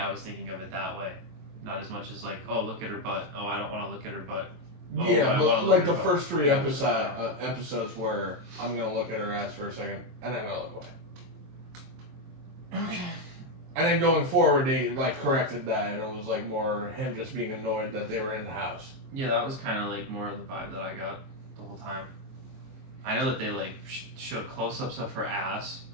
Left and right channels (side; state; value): left; late; 23 ms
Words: was thinking of it that way, not as much as like, oh, look at her butt, oh, I don't want to look at her butt. Oh, yeah, but like the first 3 episodes where I'm gonna look at her ass for a second and I'm gonna look away. Okay. And then going forward, they like corrected that, and it was like more him just being annoyed that they were in the house. Yeah, that was kind of like more of the vibe that I got the whole time. I know that they like showed close-ups of her ass,